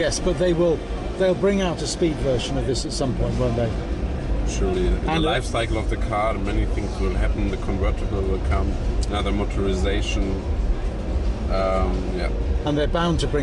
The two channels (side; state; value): both; identical; correlation 1.00